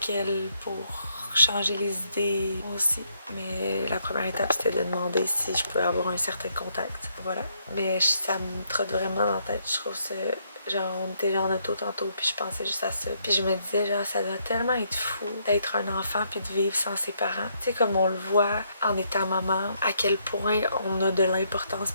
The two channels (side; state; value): both; inverted; correlation -0.73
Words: elle pour changer les idées aussi. Mais la première étape, c'était de demander si je pouvais avoir un certain contact. Voilà. Mais ça me trotte vraiment dans la tête. Je trouve ça... Genre, on était en auto tantôt, puis je pensais juste à ça. Puis je me disais, genre, ça doit tellement être fou d'être un enfant puis de vivre sans ses parents. Tu sais, comme on le voit en étant maman, à quel point on a de l'importance